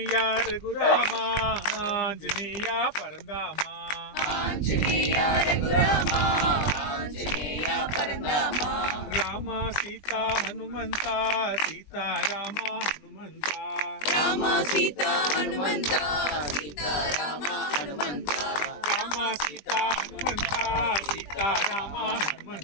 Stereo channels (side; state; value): right; late; 20 ms